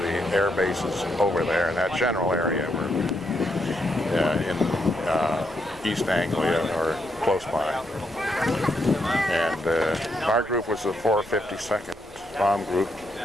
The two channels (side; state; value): both; normal; correlation 0.78